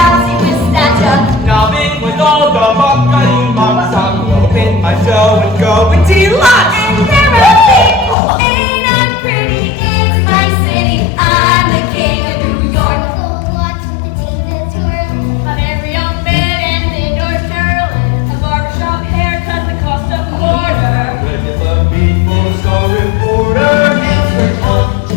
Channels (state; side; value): drops out; right; at 8.2 s